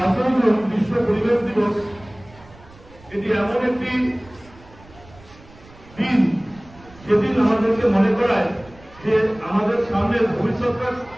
June বিশ্ব পরিবেশ দিবস এটি এমন একটি দিন যেদিন আমাদেরকে মনে করায় যে আমাদের সামনের ভবিষ্যৎটা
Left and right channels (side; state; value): right; noise; rumble, 23 dB below the sound